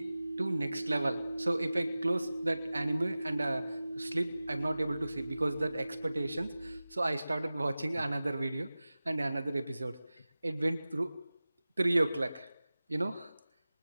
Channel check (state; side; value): inverted; both; correlation -0.97